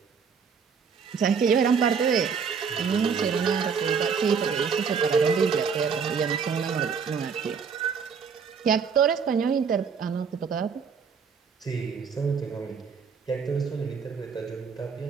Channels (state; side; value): quieter; left; 6.1 dB